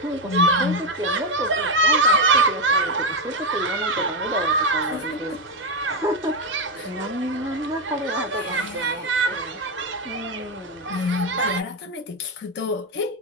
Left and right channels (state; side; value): normal; both; correlation 0.08